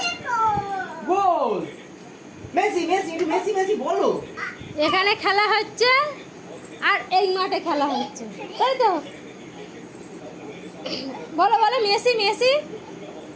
গোল। মেসি মেসি মেসি মেসি বলো। এখানে খেলা হচ্ছে আর এই মাঠে খেলা হচ্ছে, তাই তো? বলো বলো মেসি মেসি।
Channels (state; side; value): identical; both; correlation 1.00